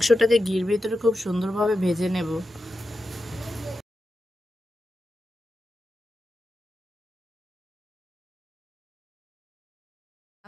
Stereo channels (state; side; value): normal; both; correlation 0.90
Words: ঘির ভিতরে খুব সুন্দরভাবে ভেজে নেব।